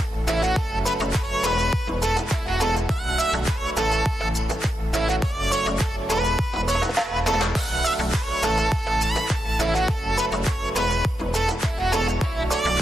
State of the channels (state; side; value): normal; both; correlation 0.87